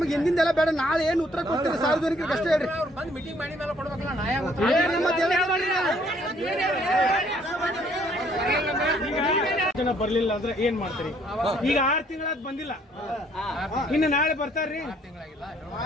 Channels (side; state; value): both; normal; correlation 0.64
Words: ಹಿಂದಿಂದೆಲ್ಲ ಬೇಡ. ನಾಳೆ ಏನು ಉತ್ತರ ಕೊಡ್ತೀರಿ ಸಾರ್ವಜನಿಕರಿಗೆ ಅಷ್ಟೇ ಹೇಳ್ರಿ. ಅವ್ರು ಬಂದು ಮೀಟಿಂಗ್ ಮಾಡಿ ಮೇಲೆ ಕೊಡ್ಬೇಕಲ್ಲ. ನಾ ಜನ ಬರ್ಲಿಲ್ಲ ಅಂದ್ರೆ ಏನ್ ಮಾಡ್ತೀರಿ? ಈಗ 6 ತಿಂಗಳಾದ್ ಬಂದಿಲ್ಲ. ಇನ್ನು ನಾಳೆ ಬರ್ತಾರ್ರಿ.